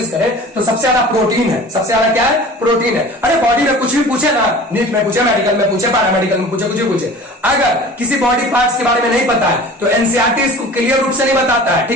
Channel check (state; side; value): normal; both; correlation 0.41